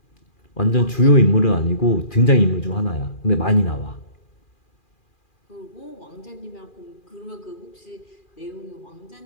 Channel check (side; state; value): right; late; 2.4 ms